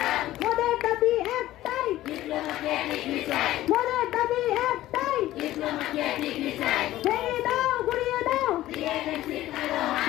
মোদের দাবি একটাই, মোদের দাবি একটাই, ভেঙে দাও গুড়িয়ে দাও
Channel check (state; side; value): quieter; right; 15.0 dB